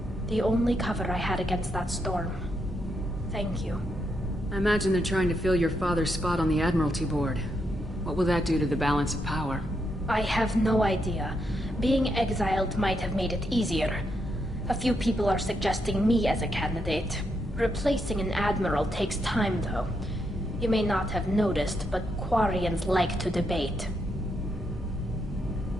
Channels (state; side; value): normal; both; correlation 0.80